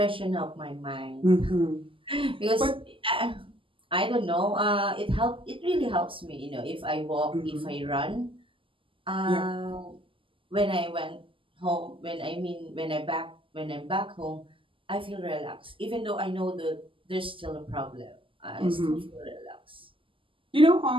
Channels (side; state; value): left; late; 0.25 ms